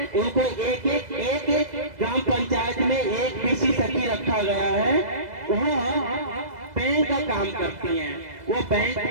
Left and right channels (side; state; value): left; late; 2.0 ms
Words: उनको एक ग्राम पंचायत में एक पीसी सखी रखा गया है, वह बैंक का काम करती हैं। वो बैंक